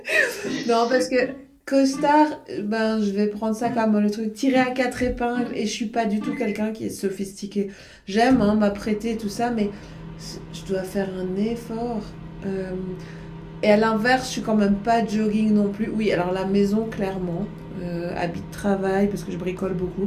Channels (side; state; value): both; identical; correlation 1.00